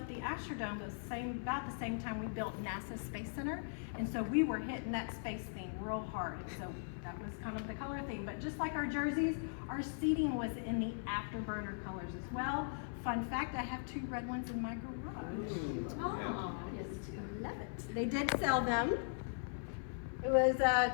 the Astrodome, it was about the same time we built NASA Space Center, and so we were hitting that space theme real hard, and so that was kind of the color theme. But just like our jerseys, our seating was in the afterburner colors as well. Fun fact, I have 2 red ones in my garage. Oh, I just love it. They did sell them. It was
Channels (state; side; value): silent; right; 51 dB below the other